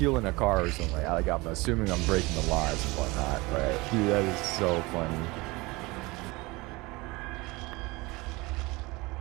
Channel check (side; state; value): left; quieter; 23.2 dB